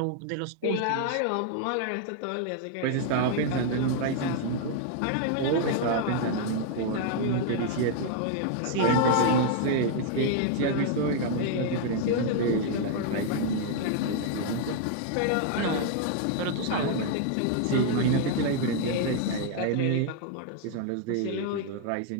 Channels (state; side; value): different; both; correlation 0.00